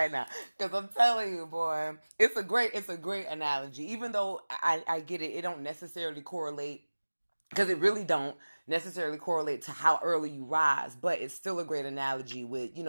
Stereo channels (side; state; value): both; inverted; correlation -1.00